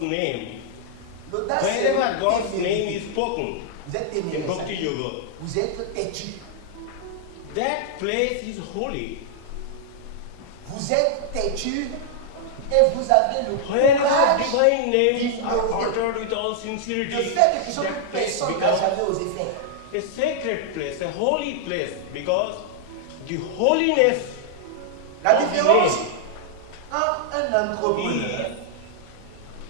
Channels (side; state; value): both; different; correlation -0.01